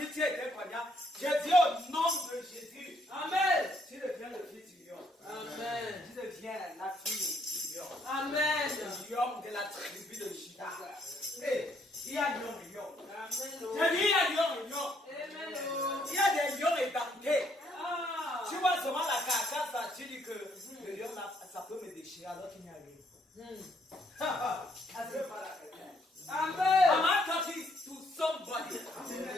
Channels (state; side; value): normal; both; correlation 0.70